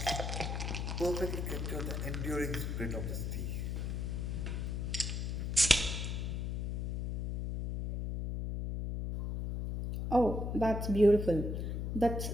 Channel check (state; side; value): noise; left; hum, 2 dB below the sound